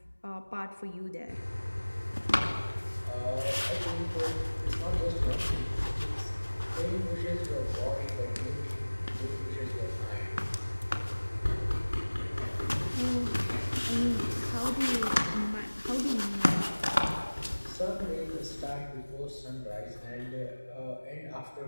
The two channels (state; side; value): inverted; both; correlation -1.00